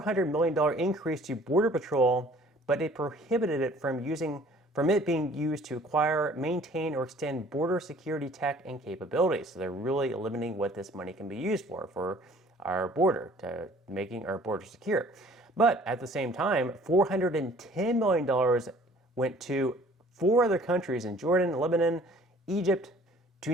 million increase to Border Patrol, but it prohibited it from it being used to acquire, maintain, or extend border security tech and capabilities. So they're really limiting what this money can be used for our border, to making our border secure. But at the same time, $410 million went to 4 other countries in Jordan, Lebanon, Egypt,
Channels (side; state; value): both; normal; correlation 0.54